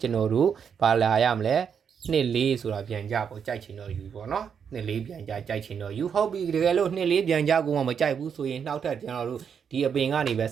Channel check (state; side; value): quieter; left; 7.2 dB